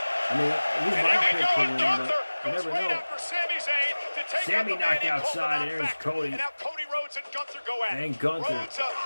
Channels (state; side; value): inverted; both; correlation -1.00